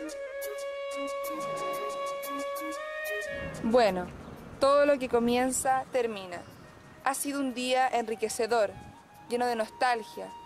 Bueno, todo lo que comienza, termina. Ha sido un día enriquecedor, lleno de nostalgia,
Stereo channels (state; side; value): identical; both; correlation 1.00